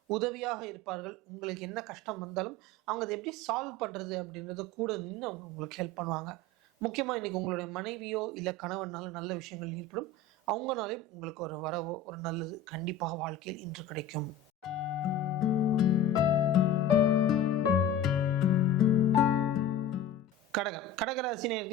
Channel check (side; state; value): right; quieter; 3.3 dB